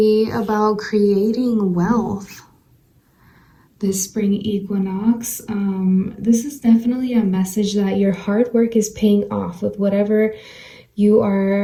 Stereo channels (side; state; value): both; identical; correlation 1.00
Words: about creating wealth this spring equinox. This is definitely a message that your hard work is paying off with whatever you